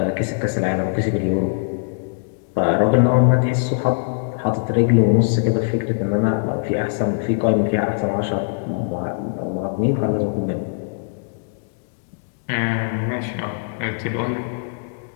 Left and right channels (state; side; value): silent; right; digital silence